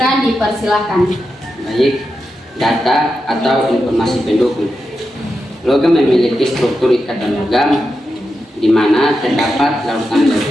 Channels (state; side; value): normal; both; correlation 0.88